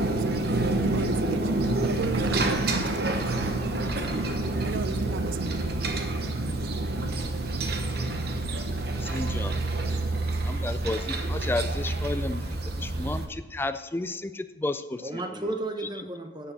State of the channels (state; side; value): normal; both; correlation 0.60